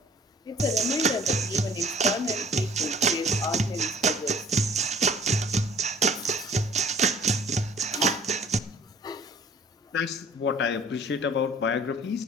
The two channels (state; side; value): normal; both; correlation 0.53